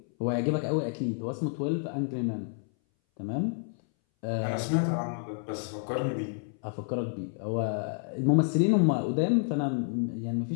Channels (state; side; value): silent; right; 58 dB below the other